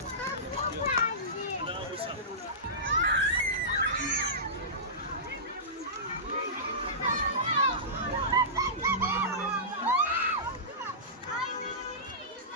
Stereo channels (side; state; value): both; normal; correlation -0.20